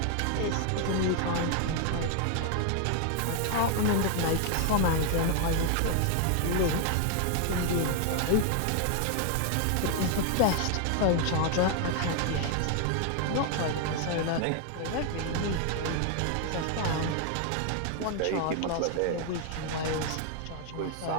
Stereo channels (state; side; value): different; both; correlation 0.00